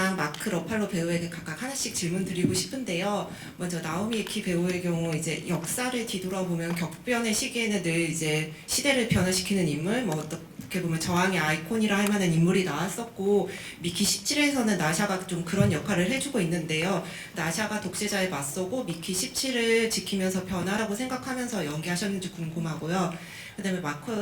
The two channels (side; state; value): both; identical; correlation 1.00